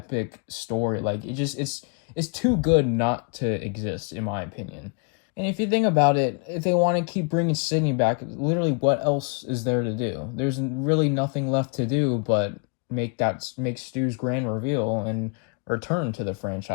story. Like, it's too good not to exist, in my opinion. And if you think about it, if they want to keep bringing Sidney back, literally what else is there to do? There's really nothing left to do but make Stu's grand reveal and return to the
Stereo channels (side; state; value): right; quieter; 37.7 dB